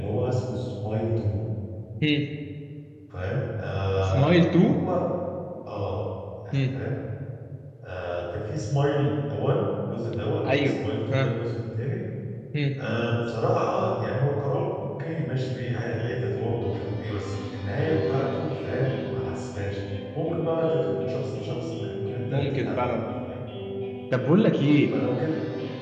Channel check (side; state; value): both; identical; correlation 1.00